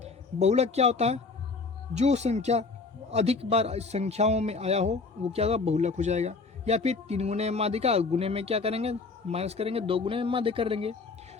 बहुलक क्या होता है, जो संख्या अधिक बार संख्याओं में आया हो वो क्या होगा बहुलक हो जाएगा। या फिर 3 गुने में माध्यिका, गुने में क्या करेंगे माइनस करेंगे, 2 गुने में माध्य कर देंगे,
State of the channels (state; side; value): quieter; right; 4.2 dB